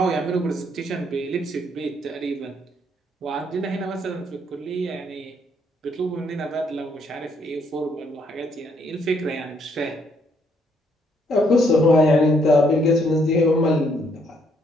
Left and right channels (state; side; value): normal; both; correlation 0.70